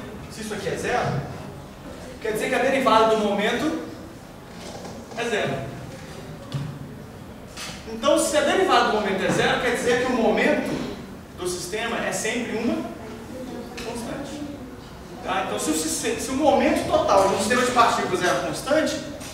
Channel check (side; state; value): both; identical; correlation 1.00